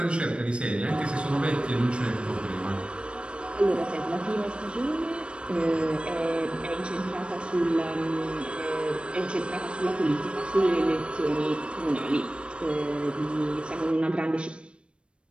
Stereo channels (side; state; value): left; late; 0.057 ms